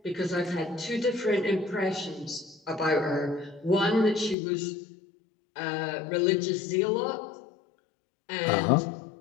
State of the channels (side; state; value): right; drops out; at 4.4 s